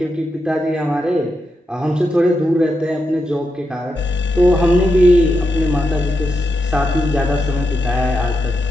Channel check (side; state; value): both; normal; correlation 0.85